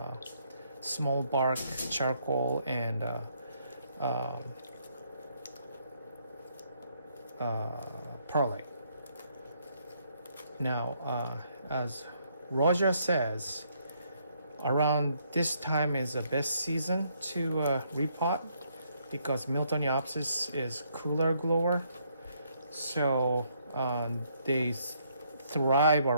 small bark charcoal and perlite. Now, as Roger says, around this time is the best season to repot because Miltoniopsis is cooler glower. So they thrive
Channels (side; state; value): both; inverted; correlation -0.72